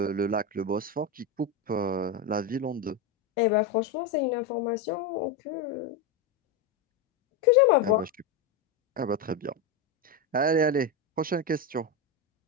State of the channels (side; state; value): right; quieter; 4.0 dB